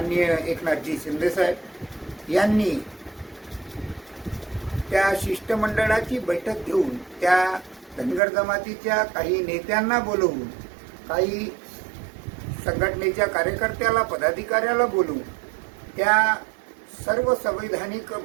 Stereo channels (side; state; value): left; drops out; at 8.2 s